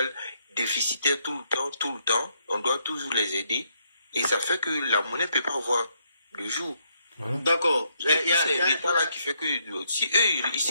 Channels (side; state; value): both; inverted; correlation -0.75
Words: déficitaires tout le temps. On doit toujours les aider. Et ça fait que la monnaie ne peut pas avoir le jour. D'accord. C'est l'État là qui fait que si eux, ils